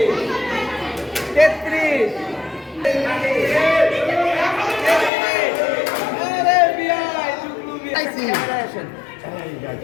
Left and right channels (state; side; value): drops out; right; at 5.1 s